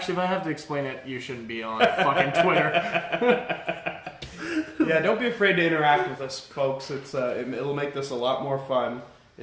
if I have to explain it, you shouldn't be on fucking Twitter. Yeah, don't be afraid to interact with us, folks. It'll make this a lot more fun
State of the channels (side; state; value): both; identical; correlation 1.00